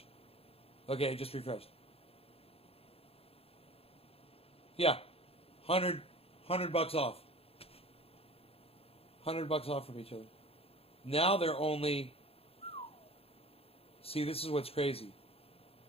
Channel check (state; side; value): late; right; 0.28 ms